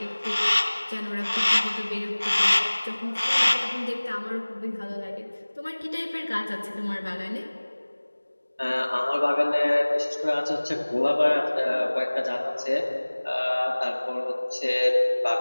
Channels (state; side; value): inverted; both; correlation -1.00